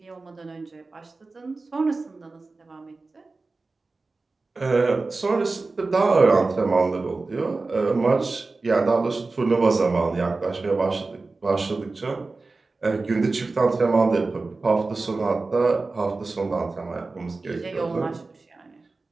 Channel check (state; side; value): quieter; left; 3.7 dB